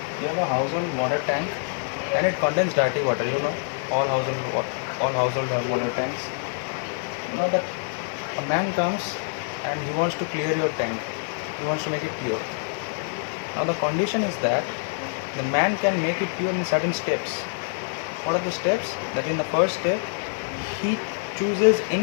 You have a household water tank and it contains dirty water. All households have water tanks. Now that a man comes and he wants to clear your tank, he wants to make it pure. Now the condition is that the man can make it pure in certain steps. What are the steps? That in the first step he chooses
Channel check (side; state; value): right; silent; digital silence